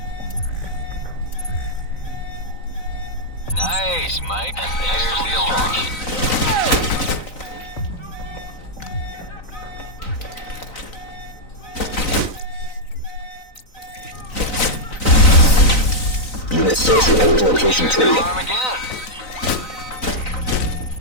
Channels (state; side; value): late; right; 3.9 ms